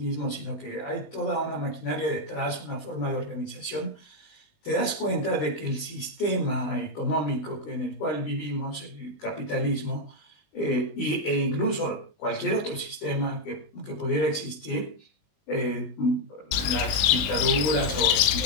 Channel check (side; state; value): right; late; 20 ms